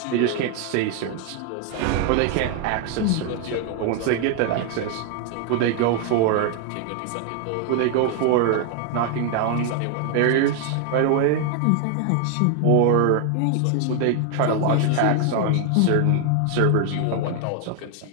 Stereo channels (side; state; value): both; different; correlation 0.00